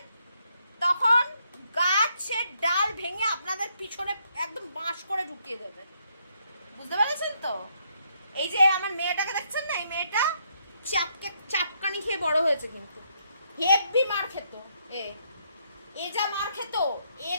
তখন গাছের ডাল ভেঙে আপনাদের পিছনে একদম বাঁশ করে ঢুকিয়ে দেবে, বুঝতে পেরেছেন তো? এই যে আমার মেয়েটাকে দেখছেন না, এই মেয়েটা চাপকানি খেয়ে বড় হয়েছে, কিন্তু হেভি মার খেত। এ যা মার খেত, এ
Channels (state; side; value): inverted; both; correlation -0.74